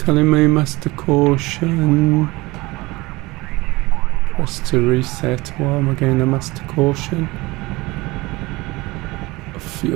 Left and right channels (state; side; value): quieter; left; 21.7 dB